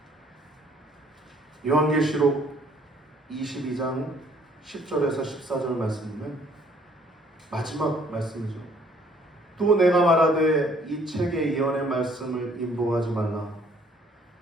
요한계시록 22장 10절에서 14절 말씀이면 마지막 말씀이죠. 또 내가 말하되 이 책의 예언의 말씀을 인보하지 말라.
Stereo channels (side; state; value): both; normal; correlation 0.61